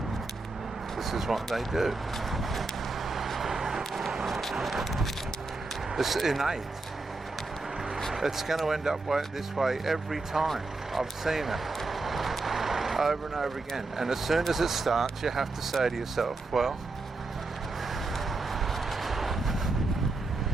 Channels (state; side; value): quieter; left; 3.5 dB